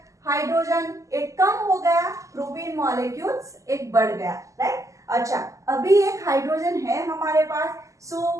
Hydrogen एक कम हो गया, प्रोपीन मॉलिक्यूल्स एक बढ़ गया, राइट। अच्छा, अभी एक हाइड्रोजन है हमारे पास,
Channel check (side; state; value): left; late; 0.16 ms